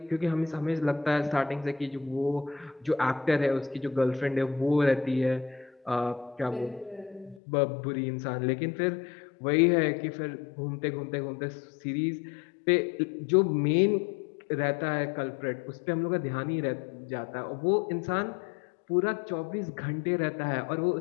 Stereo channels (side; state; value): right; drops out; at 7.4 s